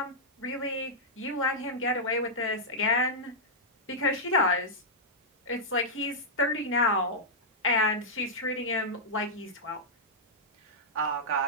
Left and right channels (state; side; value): normal; both; correlation -0.10